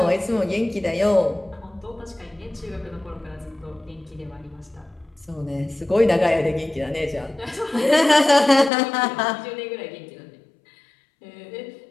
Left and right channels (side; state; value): right; drops out; at 8.7 s